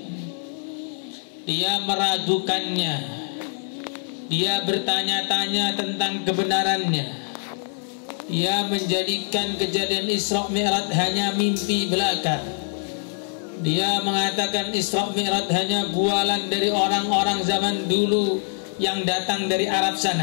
Dia meragukannya. Dia bertanya-tanya tentang kebenarannya. Dia menjadikan kejadian Isra Mi'raj hanya mimpi belaka. Dia mengatakan Isra Mi'raj hanya bualan dari orang-orang zaman dulu yang datang dari Arab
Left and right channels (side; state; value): right; silent; 63 dB below the other